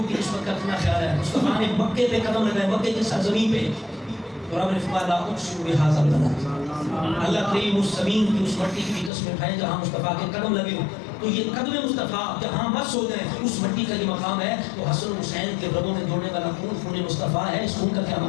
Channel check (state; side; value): drops out; right; at 9.1 s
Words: کی نسبت کا اتنا خیال ہے مصطفیٰ نے مکے پہ قدم لگائے مکے کی سرزمین پہ اور آپ نے فرمایا لا اقسم بہذا البلد اللہ کریم اس زمین کی اس مٹی کی قسم اٹھائیں جہاں مصطفیٰ کے قدم لگے ہو تو یہ قدم مصطفیٰ جہاں مس ہو جائیں اس مٹی کا یہ مقام ہے تو حسن حسین کے رگوں میں دوڑنے والا خون خون مصطفیٰ ہے اس خون کا کیا